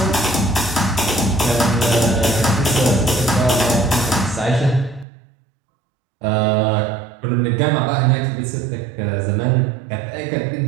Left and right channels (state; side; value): drops out; left; at 5.1 s